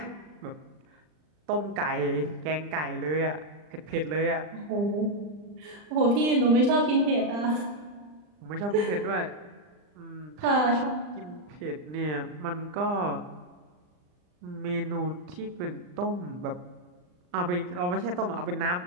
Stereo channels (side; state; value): left; late; 39 ms